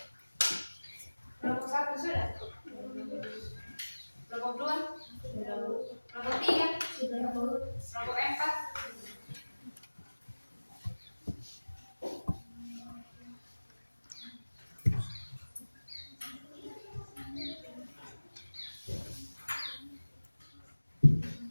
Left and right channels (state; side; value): inverted; both; correlation -1.00